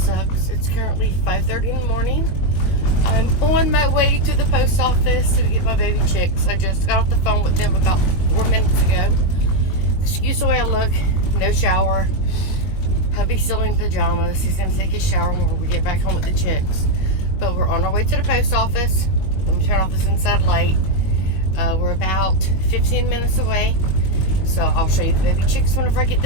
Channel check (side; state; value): right; late; 21 ms